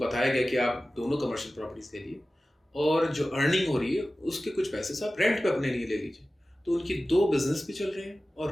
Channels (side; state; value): both; normal; correlation 0.96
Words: गया कि आप दोनों कमर्शियल प्रॉपर्टीज ले लिए और जो अर्निंग हो रही है उसके कुछ पैसे से आप रेंट पे अपने लिए ले लीजिए। तो उनकी 2 बिजनेस भी चल रहे हैं